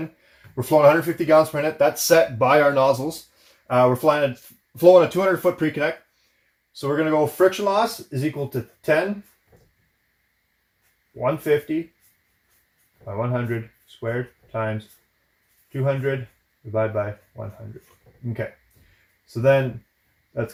We're flowing 150 gallons per minute. That's set by our nozzles. We're flowing a 200 foot pre-connect. So we're going to go friction loss is equal to 10 150 by 100 squared times 200 divided by 100. Okay. So then that's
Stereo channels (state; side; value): identical; both; correlation 1.00